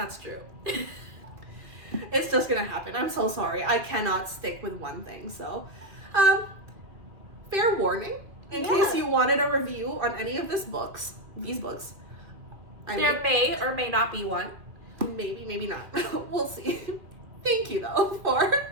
true. It's just gonna happen. I'm so sorry. I cannot stick with one thing, so... fair warning, in case you wanted a review on any of these books. There may or may not be one. Maybe not. We'll see. Thank you, though,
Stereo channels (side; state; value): left; late; 2.4 ms